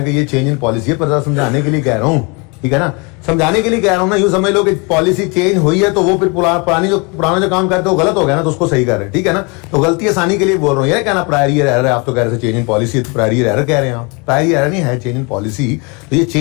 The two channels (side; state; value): right; quieter; 30.8 dB